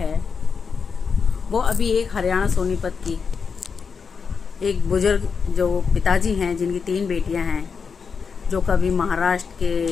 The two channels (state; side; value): quieter; right; 5.7 dB